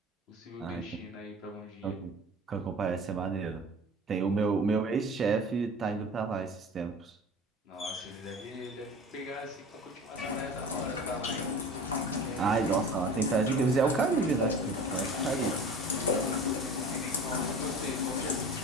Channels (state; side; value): normal; both; correlation 0.38